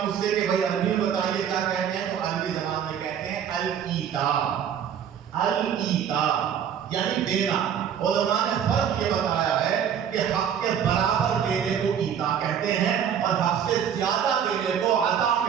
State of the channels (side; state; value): left; quieter; 8.6 dB